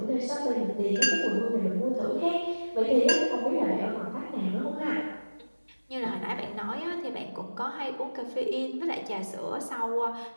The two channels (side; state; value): both; inverted; correlation -1.00